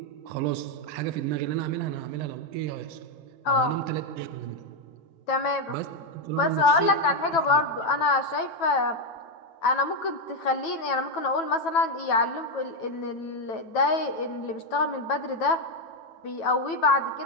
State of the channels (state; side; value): late; right; 9.1 ms